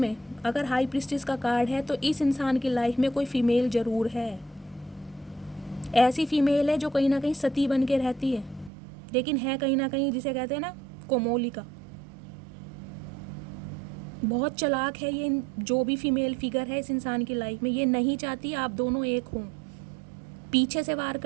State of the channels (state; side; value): drops out; left; at 8.7 s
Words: अगर हाई प्रिस्टिस का कार्ड है तो इस इंसान की लाइफ में कोई फीमेल ज़रूर है। ऐसी फीमेल है जो कहीं ना कहीं सती बन के रहती है, लेकिन है कहीं ना कहीं, जिसे कहते हैं ना, कोमोलिका। बहुत चालाक है ये, जो भी फीमेल फिगर है इस इंसान की लाइफ में। ये नहीं चाहती आप दोनों एक हों, पीछे से वार